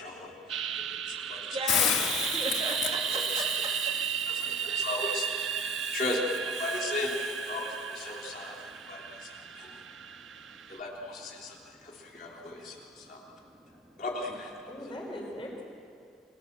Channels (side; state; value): both; normal; correlation 0.39